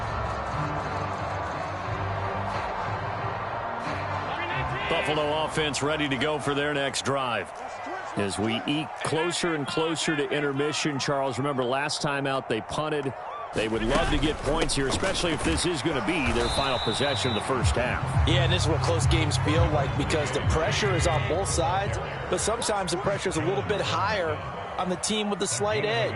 Buffalo offense ready to go for their next drive. As we eke closer and closer to intermission, Charles, remember last time out they punted. They would love to get points here, especially if this is going to be their final possession of the first half. Yeah, and this is what close games feel like because the pressure is on both sides, but sometimes the pressure is a little bit higher on the team with the slight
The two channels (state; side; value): identical; both; correlation 1.00